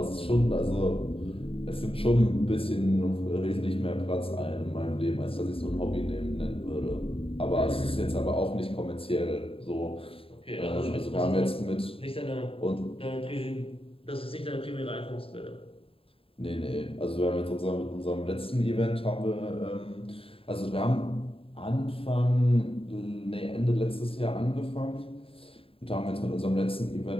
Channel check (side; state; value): right; late; 0.27 ms